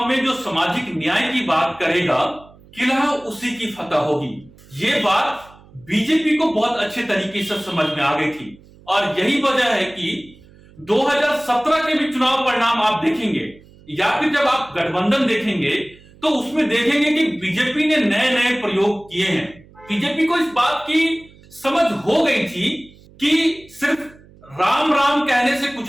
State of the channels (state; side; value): noise; right; hum, 25 dB below the sound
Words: में जो सामाजिक न्याय की बात करेगा, किला उसी की फतह होगी। ये बात बीजेपी को बहुत अच्छे तरीके से समझ में आ गई थी और यही वजह है कि 2017 के भी चुनाव परिणाम आप देखेंगे या फिर जब आप गठबंधन देखेंगे तो उसमें देखेंगे कि बीजेपी ने नए नए प्रयोग किए हैं। बीजेपी को इस बात की समझ हो गई थी कि सिर्फ राम राम कहने से